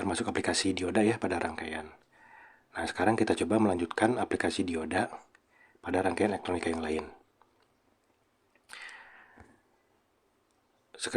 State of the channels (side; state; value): both; identical; correlation 1.00